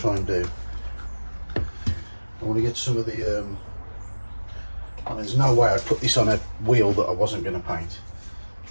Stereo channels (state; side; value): inverted; both; correlation -1.00